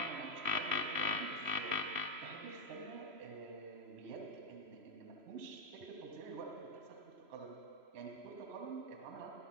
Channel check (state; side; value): late; left; 3.0 ms